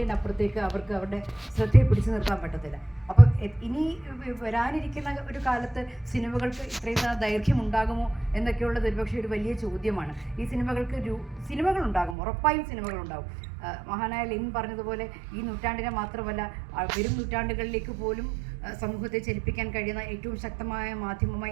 അവർക്ക് അവരുടെ ശ്രദ്ധയെ പിടിച്ചു നിർത്താൻ പറ്റത്തില്ല. അപ്പോൾ ഇനി വരാനിരിക്കുന്ന ഒരു കാലത്ത് സിനിമകൾക്ക് ഇത്രയും ദൈർഘ്യം ഉണ്ടാകുമോ എന്നൊക്കെയുള്ളത് ഒരുപക്ഷെ ഒരു വലിയ ചോദ്യമാണ്. ഈ സിനിമകൾ ഉണ്ടാകും, ഉറപ്പായും സിനിമകൾ ഉണ്ടാകും. മഹാനായ ലെനിൻ പറഞ്ഞതുപോലെ ഈ നൂറ്റാണ്ടിനെ മാത്രമല്ല വരും നൂറ്റാണ്ടുകളിലേക്ക് പോലും സമൂഹത്തെ ചലിപ്പിക്കാൻ കഴിയുന്ന ഏറ്റവും ശക്തമായ മാധ്യമമായി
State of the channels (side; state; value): left; drops out; at 12.2 s